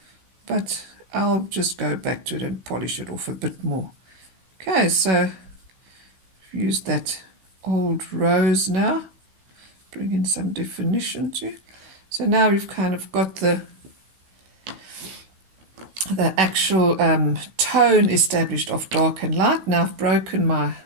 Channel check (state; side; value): late; left; 16 ms